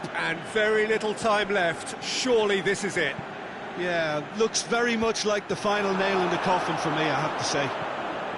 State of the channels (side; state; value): both; identical; correlation 1.00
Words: and very little time left. Surely this is it. Yeah, looks very much like the final nail in the coffin for me, I have to say.